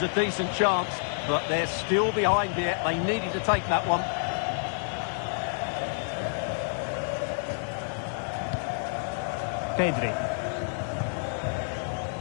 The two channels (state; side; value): silent; right; digital silence